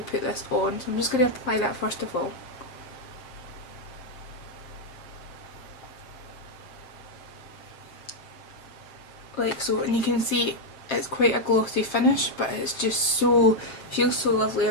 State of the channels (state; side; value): late; right; 7.5 ms